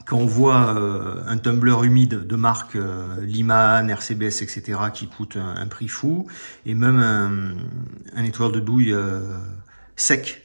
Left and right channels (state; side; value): inverted; both; correlation -1.00